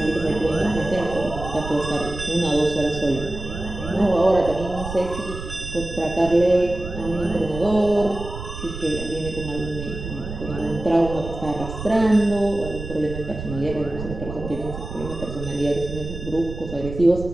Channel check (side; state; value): right; noise; rumble, 9 dB below the sound